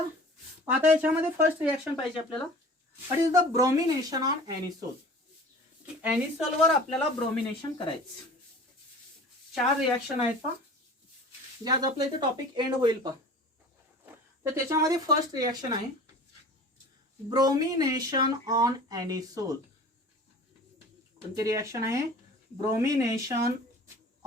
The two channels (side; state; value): both; normal; correlation 0.42